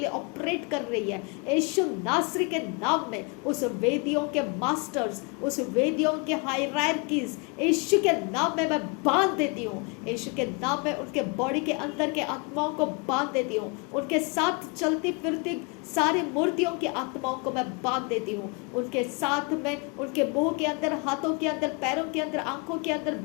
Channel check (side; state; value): right; quieter; 31.9 dB